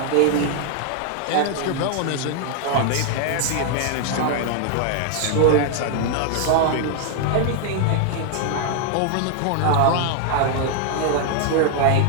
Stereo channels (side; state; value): both; different; correlation 0.00